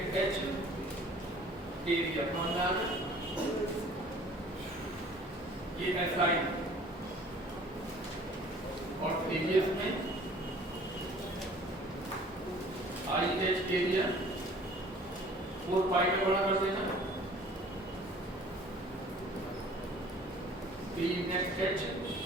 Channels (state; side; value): normal; both; correlation 0.51